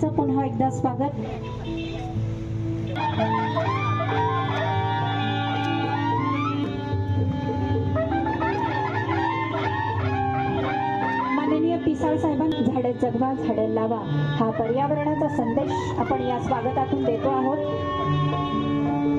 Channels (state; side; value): identical; both; correlation 1.00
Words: पुन्हा एकदा स्वागत. पिसाळ साहेबांनी झाडे जगवा झाडे लावा हा पर्यावरणाचा संदेश आपण या स्वागतातून देतो आहोत.